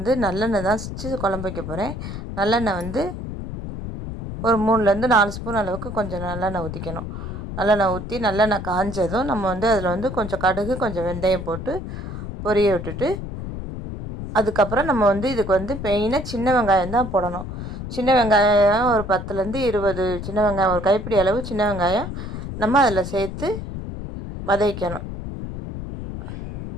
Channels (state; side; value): noise; left; rumble, 7 dB below the sound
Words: நல்லெண்ணெய் தான் வச்சு குழம்பு வைக்க போகிறேன். நல்லெண்ணெய் ஒரு 3லேருந்து 4 ஸ்பூன் அளவுக்கு கொஞ்சம் நல்லெண்ணெய் ஊற்றிக்கணும். நல்லெண்ணெய் ஊற்றி நல்லெண்ணெய் காஞ்சதும் நம்ம அதில் கொஞ்சம் கடுகு, கொஞ்சம் வெந்தயம் போட்டு பொரிய விட்டுட்டு, அதுக்கப்புறம் நம்ம இதுக்கு மெயினாக சின்ன வெங்காயம் தான் போடணும். சின்ன வெங்காயம் ஒரு 10லேருந்து 20 சின்ன வெங்காயம், ஒரு கைப்பிடி அளவு சின்ன வெங்காயம் நம்ம அதில் சேர்த்து வதக்கணும்.